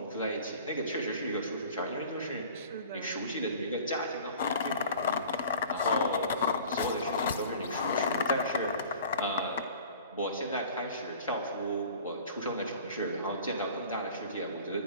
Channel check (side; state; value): both; inverted; correlation -0.45